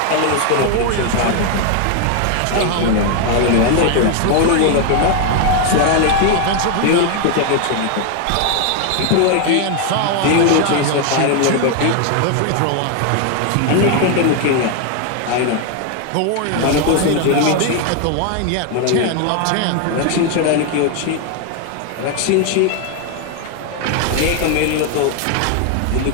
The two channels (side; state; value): both; different; correlation 0.01